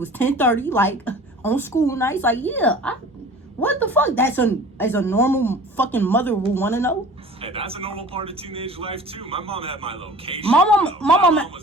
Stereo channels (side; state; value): both; normal; correlation 0.43